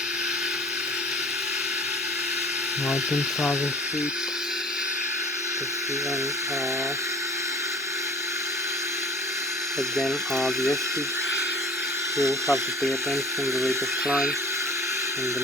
Now 10,000 feet. Again, the airspeed. Here we have to pay attention to the rate of climb and the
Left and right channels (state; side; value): normal; both; correlation 0.46